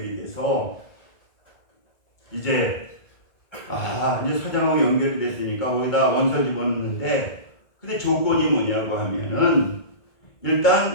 돼서 이제 사장하고 연결이 됐으니까 거기다 원서 집어넣는데, 근데 조건이 뭐냐고 하면은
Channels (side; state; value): right; late; 1.8 ms